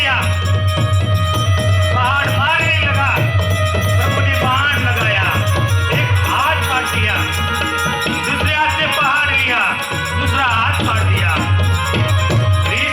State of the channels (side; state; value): both; identical; correlation 1.00